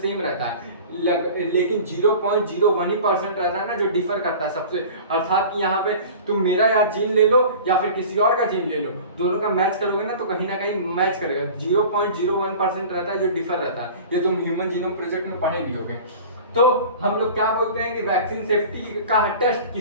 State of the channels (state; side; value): inverted; both; correlation -0.39